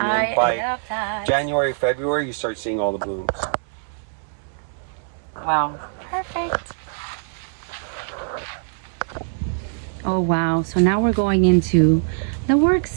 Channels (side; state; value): left; silent; digital silence